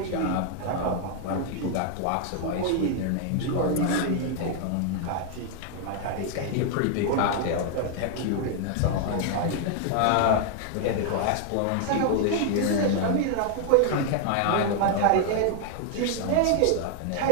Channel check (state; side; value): different; both; correlation 0.00